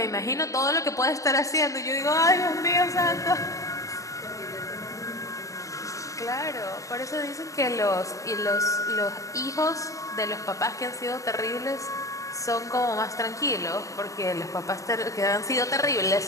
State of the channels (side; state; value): right; late; 0.16 ms